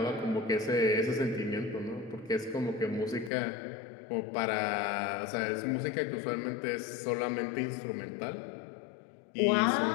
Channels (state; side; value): drops out; right; at 3.3 s